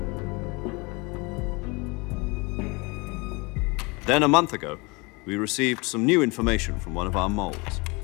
Then a month ago, we received some new information from one of our moles.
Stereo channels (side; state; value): right; quieter; 27.2 dB